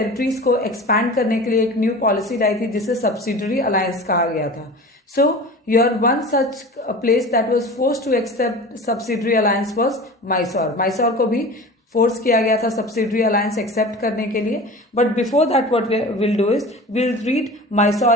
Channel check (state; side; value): normal; both; correlation 0.36